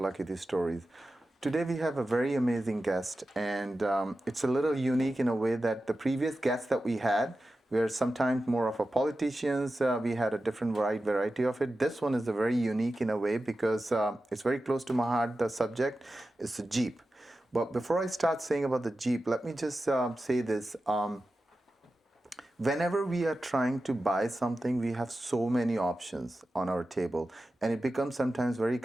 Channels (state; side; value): normal; both; correlation 0.93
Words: These Stories. Today we have a very amazing guest, and it's a little unique in a way that the previous guests that we had were sometimes more of a politicians. We had a different variety of it. This one is a very unique in a way because it's very close to my heart. The subject is the Jeep. But before I start saying about the Jeep, let me just say this. Whenever we are trying to buy something, we have so many options on our table, and it becomes sometimes very